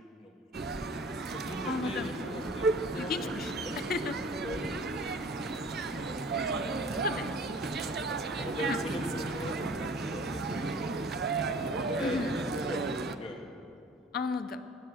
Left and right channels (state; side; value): normal; both; correlation 0.47